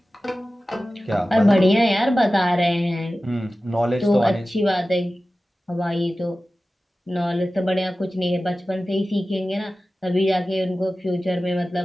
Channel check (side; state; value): both; normal; correlation 0.95